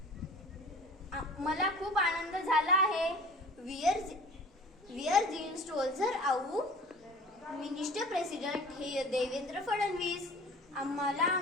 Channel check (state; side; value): normal; both; correlation 0.44